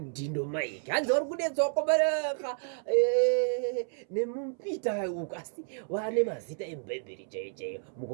maiki hanzi vari kudetsa wakobereka nemumpita uko asi vane mazita emubhebheri chaichayo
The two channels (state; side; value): silent; left; 57 dB below the other